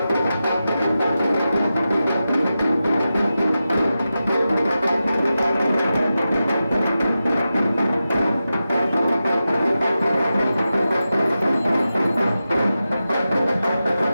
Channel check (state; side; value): inverted; both; correlation -0.92